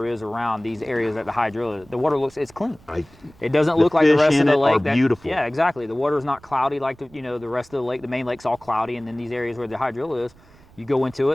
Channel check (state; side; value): noise; right; rumble, 26 dB below the sound